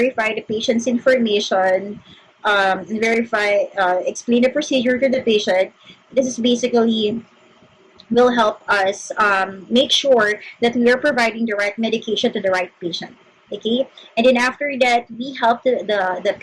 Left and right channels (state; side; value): identical; both; correlation 1.00